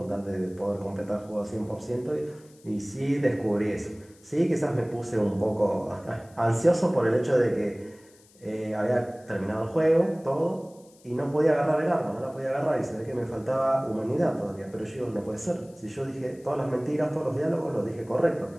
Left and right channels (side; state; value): left; noise; hiss, 28 dB below the sound